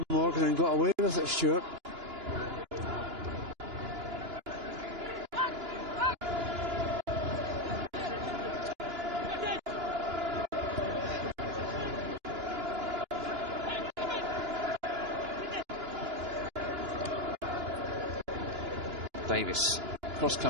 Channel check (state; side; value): late; left; 2.9 ms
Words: Morgan, and got away with it, Stuart. Davis. Cross